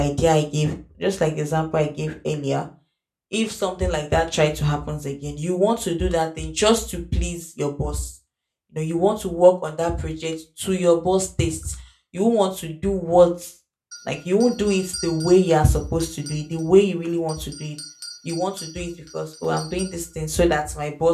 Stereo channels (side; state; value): both; identical; correlation 1.00